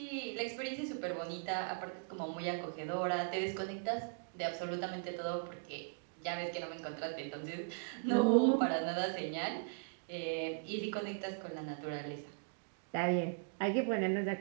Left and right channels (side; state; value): left; silent; digital silence